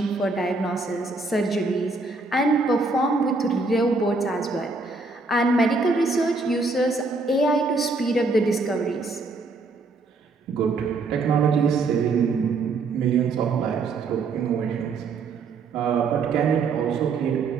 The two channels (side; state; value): left; quieter; 3.8 dB